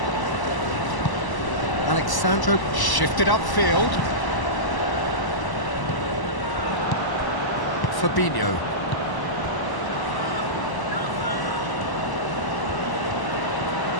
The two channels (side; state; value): right; late; 1.0 ms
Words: Alexandro shifted upfield. Fabinho.